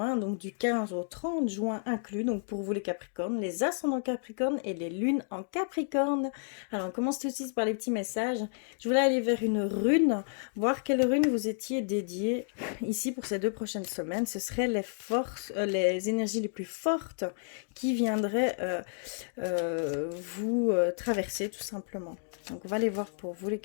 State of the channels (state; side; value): silent; right; digital silence